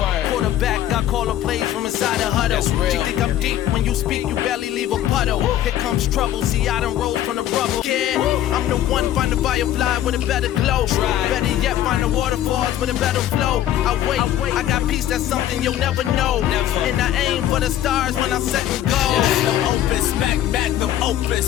Quarterback, I call her plays from inside a huddle. She think I'm deep, when you speak, you barely leave a puddle. Here comes trouble, see I done rolled from the rubble. Yeah, I'm the one, find a firefly with a better glow. Better yet, find the waterfalls with a better flow. I wait, I got peace, that's something you'll never know. And I aim for the stars when I set and go. Magnum opus, magnum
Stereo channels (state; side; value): quieter; right; 12.2 dB